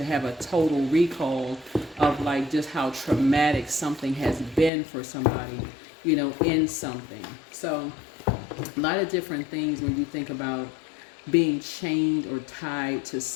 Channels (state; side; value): drops out; right; at 4.7 s